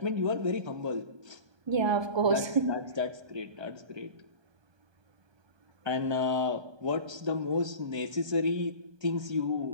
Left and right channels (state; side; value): late; left; 1.2 ms